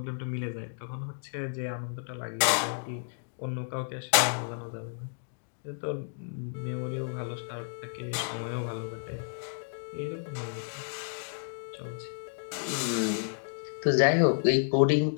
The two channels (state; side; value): silent; right; digital silence